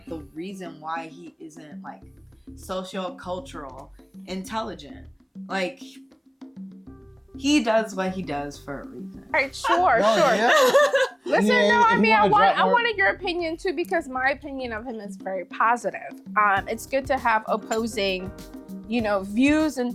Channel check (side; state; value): both; identical; correlation 1.00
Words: the reason why he isn't like socio-cultural intelligent. Like he does what he does for a reason. All right, sure. Yeah. Listen, Yeah, no, I if mean, you I wanna drop more- wanted your opinion too, because my opinion of him is very positive. It's good to have opposing, views